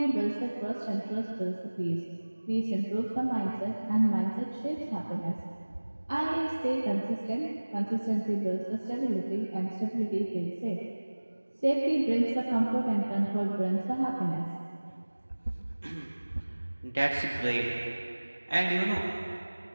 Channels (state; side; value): inverted; both; correlation -1.00